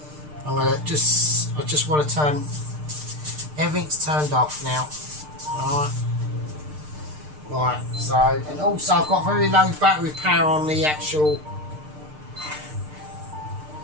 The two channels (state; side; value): late; left; 6.6 ms